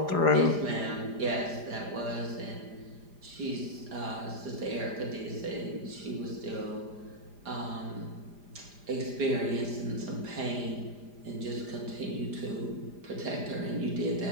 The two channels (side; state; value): left; late; 4.9 ms